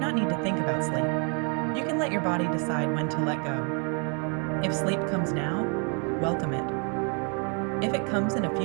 need to think about sleep. You can let your body decide when to let go. If sleep comes now, welcome it. If it comes in a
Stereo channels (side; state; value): left; quieter; 37.7 dB